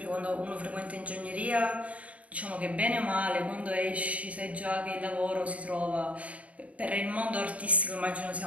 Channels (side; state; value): left; late; 0.067 ms